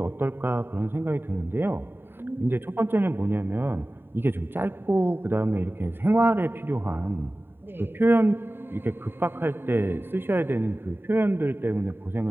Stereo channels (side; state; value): left; late; 0.11 ms